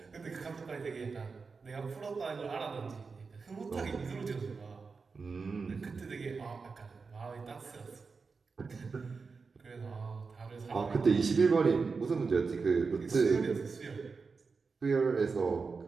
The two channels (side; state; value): left; quieter; 4.7 dB